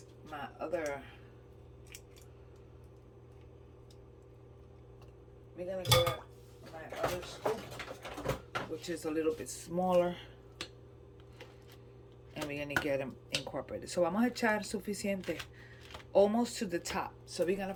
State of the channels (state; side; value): identical; both; correlation 1.00